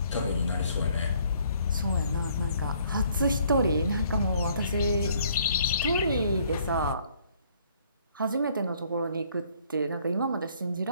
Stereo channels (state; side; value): inverted; both; correlation -0.62